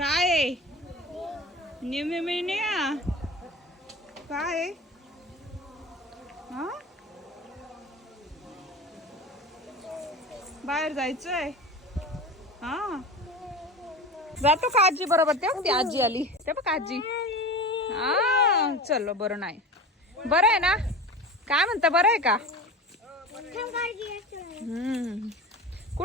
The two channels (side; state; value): both; normal; correlation 0.32